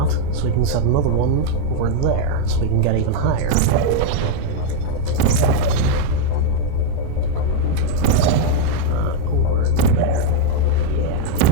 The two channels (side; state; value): both; different; correlation 0.00